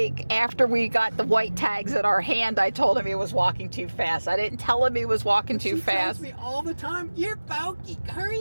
after we got the white tags in our hand, I told him he was walking too fast. I didn't tell him he was walking too fast. She tells me all the time, you're bulky.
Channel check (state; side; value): inverted; both; correlation -1.00